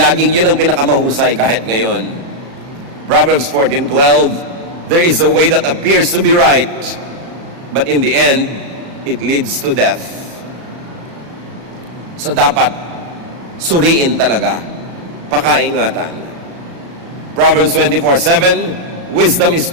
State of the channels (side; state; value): left; late; 36 ms